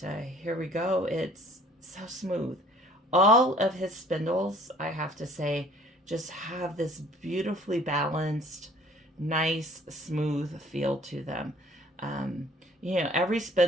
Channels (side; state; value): both; normal; correlation 0.54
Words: here we go, it's so smooth. All of his spindles, I have to say, just have this beautifully balanced, nice, smooth feel to them. every